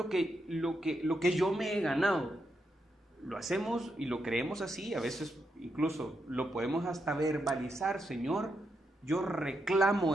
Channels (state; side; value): normal; both; correlation 0.83